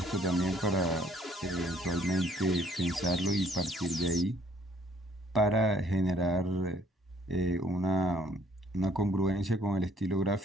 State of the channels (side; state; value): both; normal; correlation 0.62